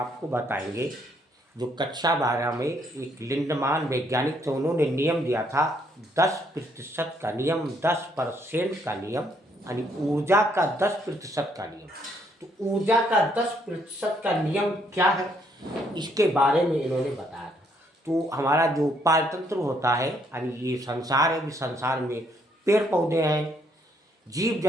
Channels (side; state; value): both; normal; correlation 0.70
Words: बताएंगे जो कक्षा 12 में एक लिंडमान वैज्ञानिक थे, उन्होंने नियम दिया था 10% का नियम, 10% का नियम, यानी ऊर्जा का 10% का नियम। तो ऊर्जा का 10% का नियम क्या है, इसके बारे में इन्होंने बताया था। तो हमारा जो पारतंत्र होता है, यानी ये संसार है, इस संसार में पेड़ पौधे हैं, जीव